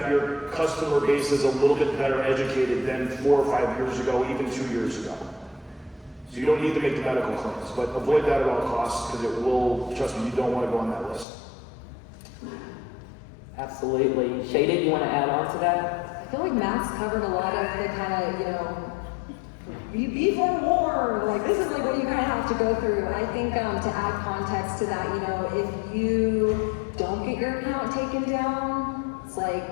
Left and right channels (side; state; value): right; drops out; at 11.2 s